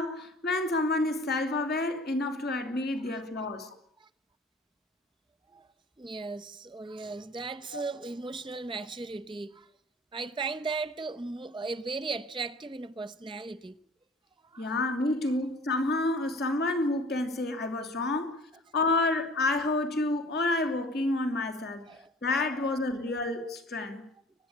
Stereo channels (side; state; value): both; normal; correlation 0.48